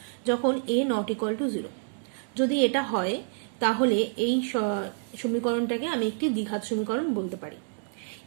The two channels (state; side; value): silent; left; 59 dB below the other